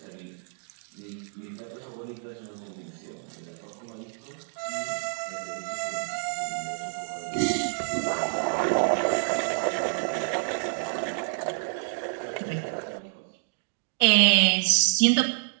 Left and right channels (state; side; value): silent; left; digital silence